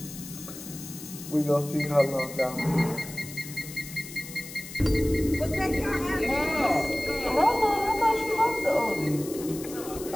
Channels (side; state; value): left; noise; hiss, 13 dB below the sound